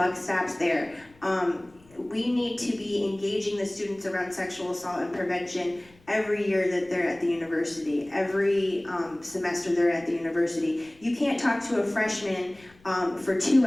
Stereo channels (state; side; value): noise; left; rumble, 28 dB below the sound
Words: stops there. We need to be engaging the students around sexual assault and prevention every year that they're at the university, every semester they're at the university. You can't talk to a freshman for 2